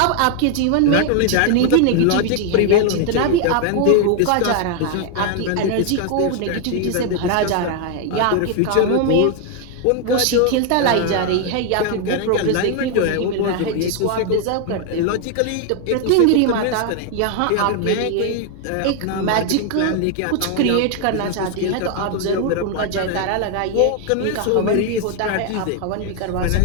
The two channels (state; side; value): different; both; correlation 0.00